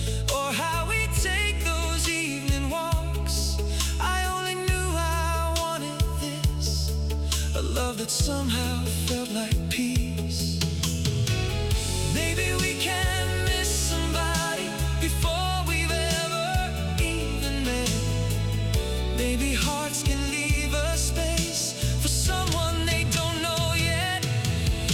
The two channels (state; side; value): identical; both; correlation 1.00